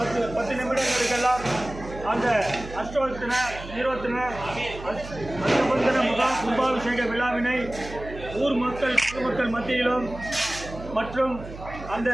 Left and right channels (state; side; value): noise; right; hum, 13 dB below the sound